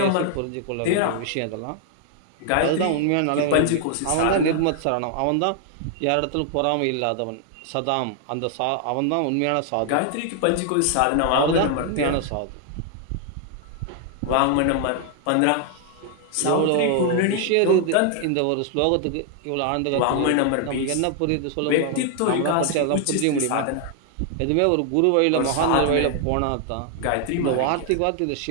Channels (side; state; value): both; different; correlation 0.00